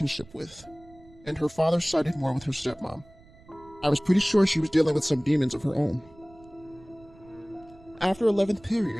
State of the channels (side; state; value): right; noise; rumble, 25 dB below the sound